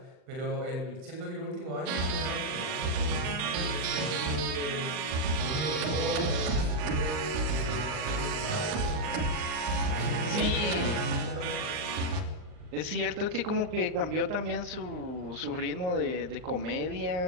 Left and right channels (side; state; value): left; late; 40 ms